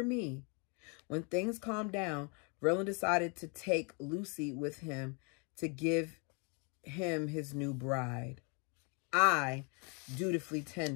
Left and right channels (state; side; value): quieter; right; 34.5 dB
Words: me? When things calmed down, Verlin decided to take Lucy with him to give him his new bride. I dutifully